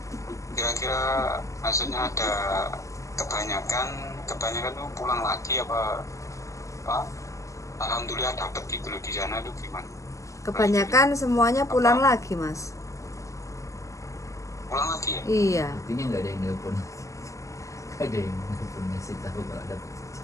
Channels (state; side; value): late; right; 0.15 ms